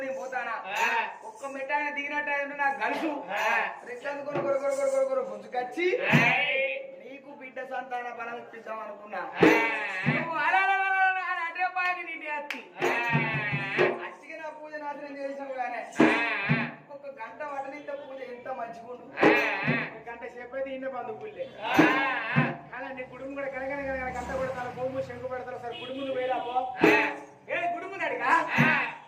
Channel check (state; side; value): identical; both; correlation 1.00